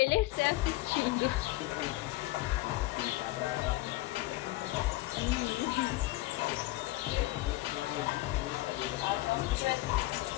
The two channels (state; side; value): quieter; right; 18.9 dB